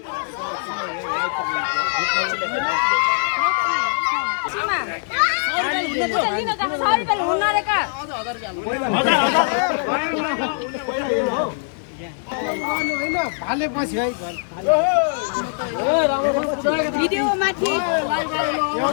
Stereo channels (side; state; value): right; silent; 64 dB below the other